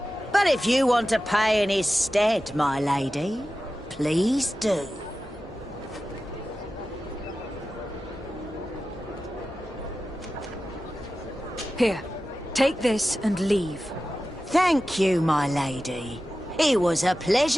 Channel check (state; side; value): normal; both; correlation 0.94